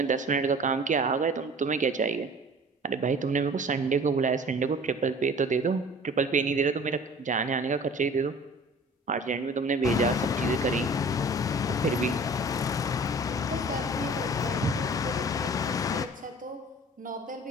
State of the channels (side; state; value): both; normal; correlation 0.45